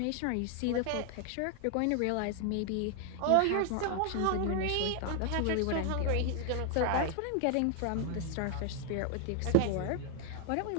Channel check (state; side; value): different; both; correlation 0.00